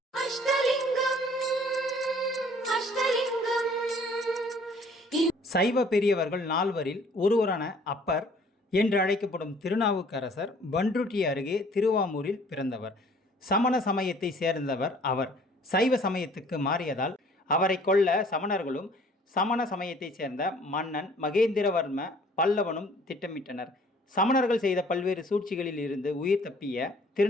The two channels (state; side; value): normal; both; correlation 0.55